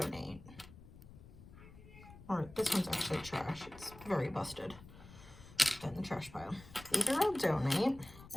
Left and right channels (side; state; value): left; noise; rumble, 18 dB below the sound